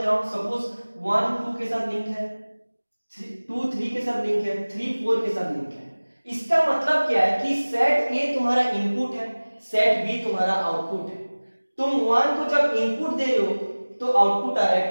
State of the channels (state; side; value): inverted; both; correlation -1.00